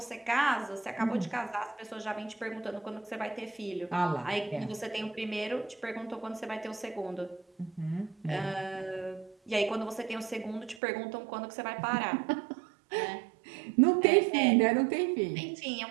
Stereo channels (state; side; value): drops out; left; at 10.8 s